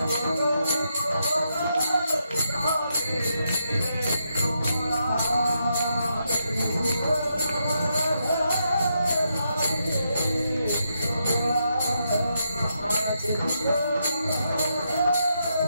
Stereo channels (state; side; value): inverted; both; correlation -0.81